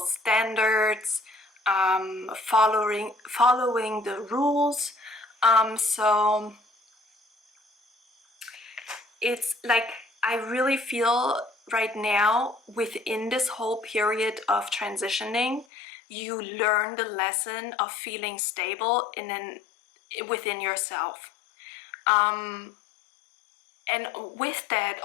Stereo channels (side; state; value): right; drops out; at 15.7 s